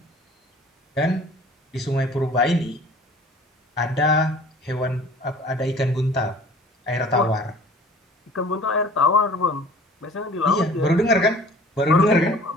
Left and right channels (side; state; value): both; normal; correlation 0.47